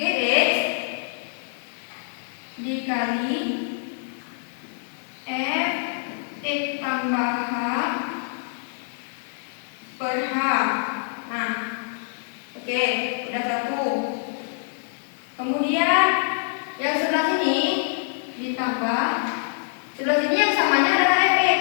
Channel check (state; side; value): silent; right; 62 dB below the other